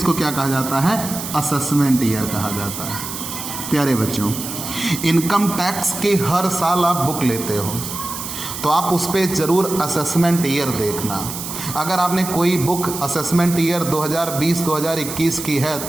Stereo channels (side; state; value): right; noise; hiss, 7 dB below the sound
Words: क्या कहा जाता है, असेसमेंट ईयर कहा जाता है। प्यारे बच्चों, इनकम टैक्स की हर साल आप बुक लेते हो तो आप उस पर ज़रूर असेसमेंट ईयर देखना। अगर आपने कोई बुक असेसमेंट ईयर 2020-2021 की है